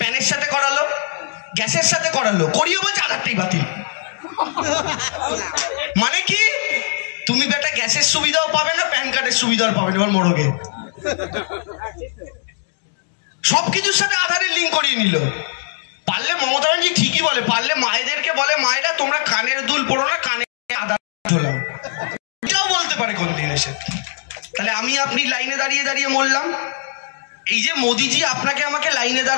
সাথে করালো, গ্যাসের সাথে করালো, করিয়ে বলছে আধারটাই বাতিল। মানে কি? তুমি বেটা গ্যাসের সুবিধাও পাবে না, প্যান কার্ডের সুবিধাও পাবে না, এবার মরগে। সবকিছুর সাথে আধারের লিঙ্ক করিয়ে নিল। পারলে মমতা ব্যানার্জি ঠিকই বলে, পারলে মায়েদেরকে বলে, মায়েরা তোমরা কানের দুল পড়ো না, কানে আধার ঝোলাও। এটাও বলতে পারে কোন দিন এসে। তাহলে আমি আপনি লাইনে দাঁড়িয়ে দাঁড়িয়ে মরলাম। এই যে মোদিজি আপনাকে আমাকে লাইনে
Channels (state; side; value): silent; right; digital silence